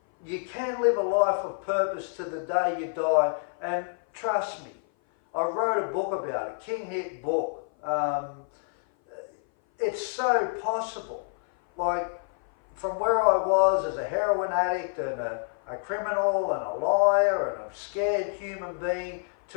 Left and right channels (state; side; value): silent; right; 56 dB below the other